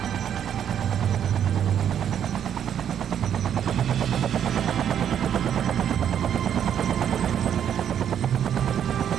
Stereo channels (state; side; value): quieter; left; 9.2 dB